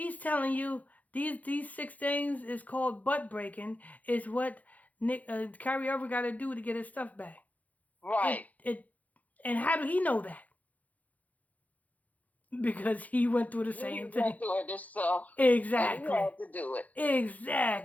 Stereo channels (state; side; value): late; right; 0.076 ms